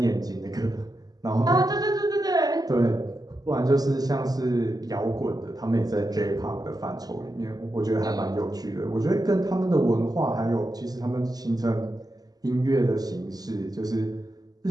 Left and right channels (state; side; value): late; left; 0.19 ms